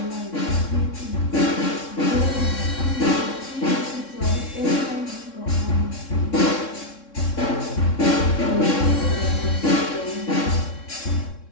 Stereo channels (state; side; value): late; right; 3.6 ms